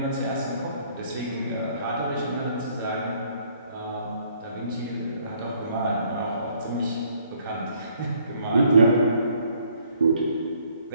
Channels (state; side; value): inverted; both; correlation -0.64